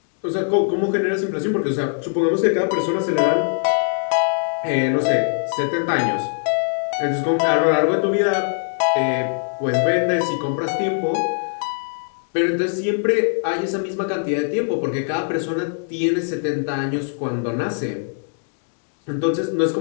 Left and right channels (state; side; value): silent; right; digital silence